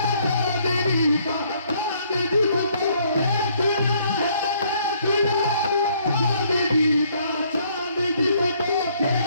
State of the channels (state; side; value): inverted; both; correlation -0.65